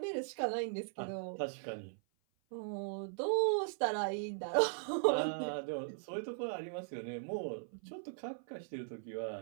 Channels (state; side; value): silent; left; 52 dB below the other